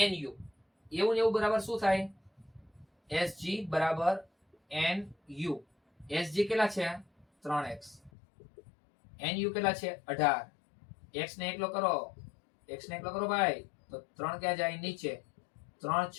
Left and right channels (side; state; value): right; drops out; at 8.1 s